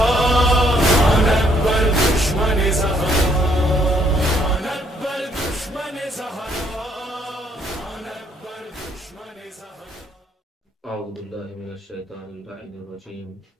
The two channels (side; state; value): both; normal; correlation 0.68